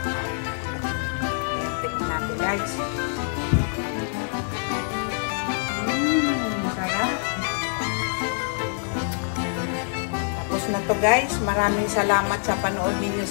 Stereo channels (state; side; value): silent; right; 58 dB below the other